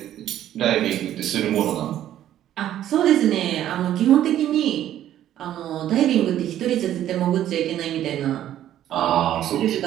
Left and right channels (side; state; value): left; quieter; 11.9 dB